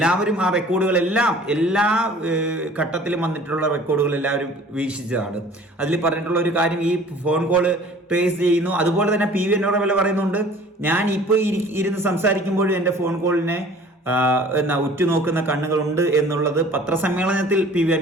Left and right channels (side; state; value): both; normal; correlation 0.49